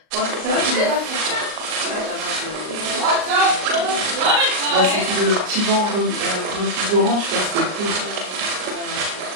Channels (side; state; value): left; late; 38 ms